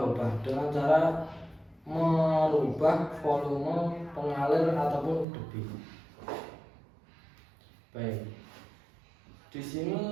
dengan cara merubah volume pengalir ataupun debit. Baik, di sini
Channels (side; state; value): left; drops out; at 5.2 s